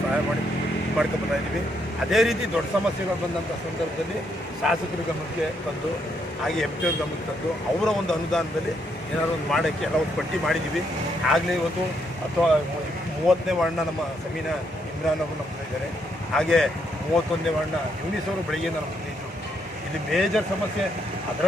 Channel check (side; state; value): both; normal; correlation 0.75